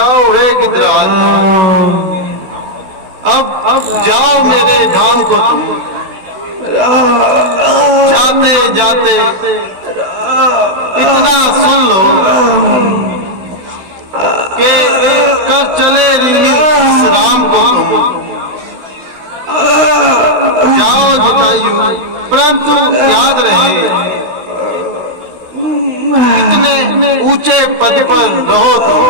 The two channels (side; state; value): left; late; 16 ms